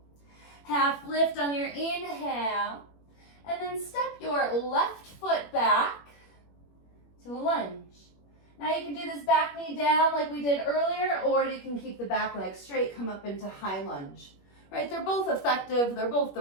Half lift on your inhale. And then step your left foot back to a lunge. Now you can do this back knee down like we did earlier, or you can keep the back leg straight, come up into high lunge. Right? They're both effective. They're both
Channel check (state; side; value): late; right; 21 ms